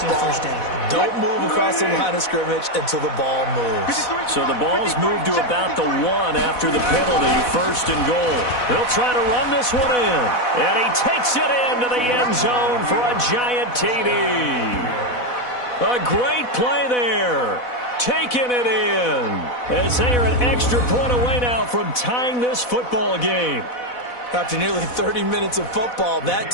Don't move across the line of scrimmage until the ball moves. So the ball's moved to about the 1 after the penalty, first and goal. They'll try to run this one in. And he takes it into the end zone for a giant TD. A great play there. Taking it in. As they are an extra point away now from tying this football game. After nearly 30 minutes of football, that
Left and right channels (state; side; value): late; right; 4.1 ms